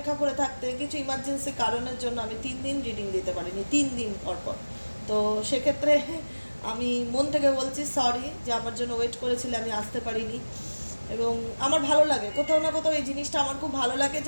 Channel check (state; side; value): inverted; both; correlation -1.00